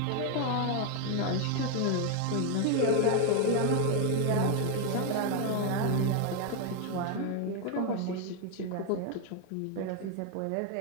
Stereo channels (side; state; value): both; different; correlation 0.01